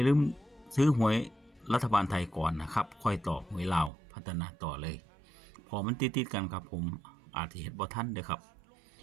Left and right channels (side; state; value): left; drops out; at 3.9 s